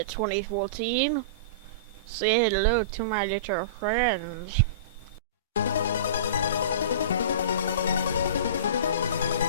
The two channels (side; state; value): both; inverted; correlation -0.31